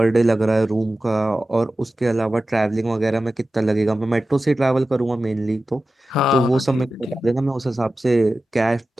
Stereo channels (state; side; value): normal; both; correlation 0.94